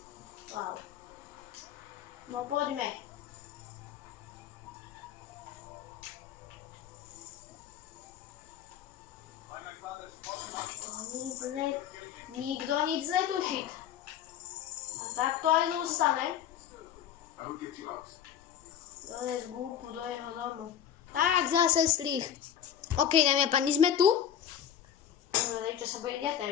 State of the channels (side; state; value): right; quieter; 9.6 dB